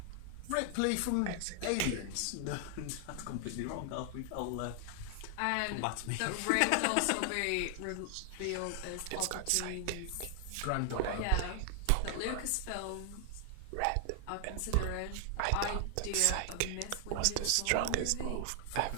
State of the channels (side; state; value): both; different; correlation 0.00